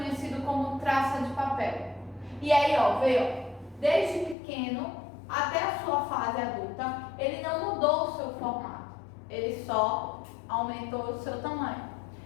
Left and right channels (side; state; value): right; drops out; at 4.4 s